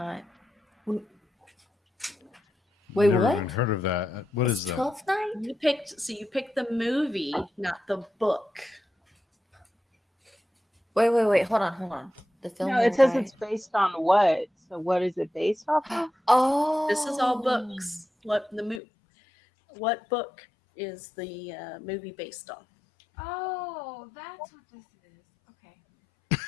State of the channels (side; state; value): right; drops out; at 18.8 s